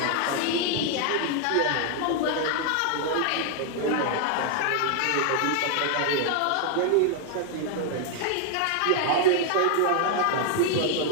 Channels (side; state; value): both; different; correlation 0.00